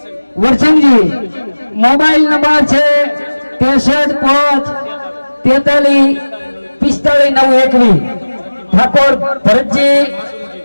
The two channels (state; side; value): inverted; both; correlation -1.00